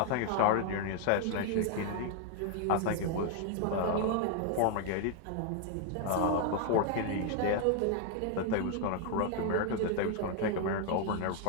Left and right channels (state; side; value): different; both; correlation 0.00